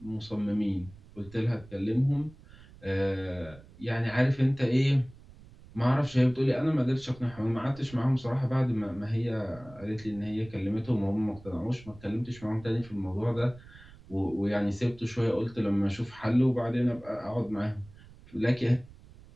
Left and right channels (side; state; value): right; noise; rumble, 21 dB below the sound